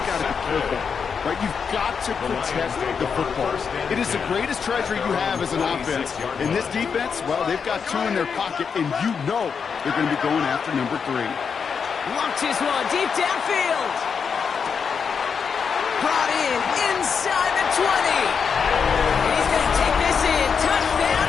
got to be careful. Right? You've got to protect the football. It is the greatest treasure you have as an offense. In this defense, well, they've got 2 in their pocket, and you know they're going to be going after number 3. Launches one deep downfield. Brought in inside the 20. And he's going to take this in. Touchdown,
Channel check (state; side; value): quieter; right; 6.2 dB